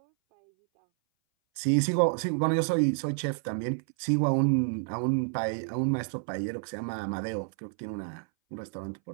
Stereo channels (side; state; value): left; silent; 58 dB below the other